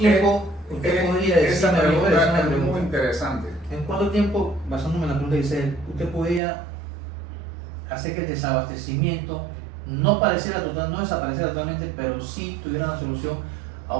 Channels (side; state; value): left; drops out; at 6.4 s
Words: usted podría esa decirme, le voy a decir pregunta una es muy pregunta? interesante. ¿En cuánto tiempo, basándome en la pregunta que dice, usted podría hacer que el desabastecimiento no pareciera total, no desapareciera totalmente, pero sí tuviera una solución a